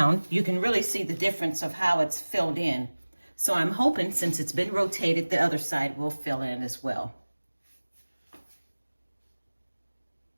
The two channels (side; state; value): both; inverted; correlation -1.00